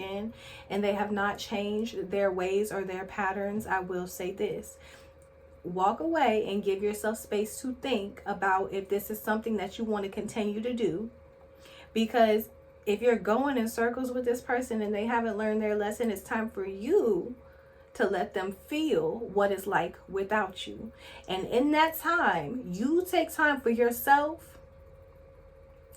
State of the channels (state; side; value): identical; both; correlation 1.00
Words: and they have not changed their ways or their patterns, I will say this: walk away and give yourself space to think about if this is something that you want to continue to do. Because if you're going in circles with this person and they haven't learned their lesson, it's time for you to let them feel what it's like without you. And in that time, you take time for yourself